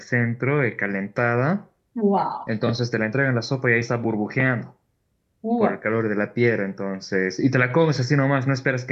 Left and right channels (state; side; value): identical; both; correlation 1.00